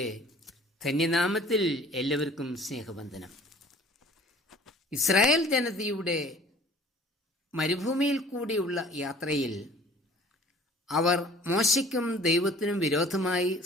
ധന്യനാമത്തിൽ എല്ലാവർക്കും സ്നേഹവന്ദനം. ഇസ്രായേൽ ജനതയുടെ മരുഭൂമിയിൽ കൂടിയുള്ള യാത്രയിൽ അവർ മോശയ്ക്കും ദൈവത്തിനും വിരോധമായി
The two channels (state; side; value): normal; both; correlation 0.49